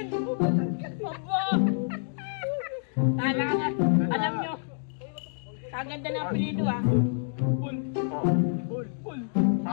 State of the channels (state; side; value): silent; right; digital silence